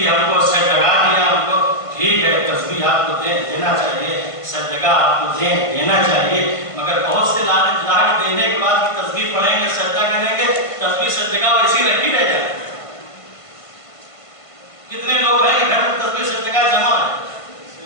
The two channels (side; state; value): right; late; 1.5 ms